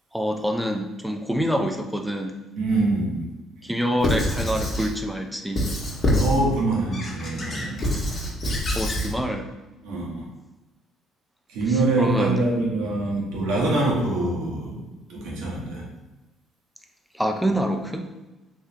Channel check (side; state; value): both; normal; correlation 0.69